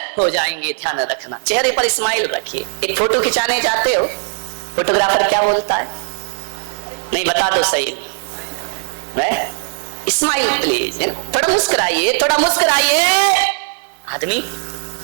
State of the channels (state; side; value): silent; left; digital silence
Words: हो जाएंगे। ध्यान रखना, चेहरे पर स्माइल रखिए। एक फोटो खिंचाने जाते हो, फोटोग्राफर क्या बोलता है? नहीं बता दो सही, स्माइल प्लीज, थोड़ा मुस्कुराइए, थोड़ा मुस्कुराइए। आदमी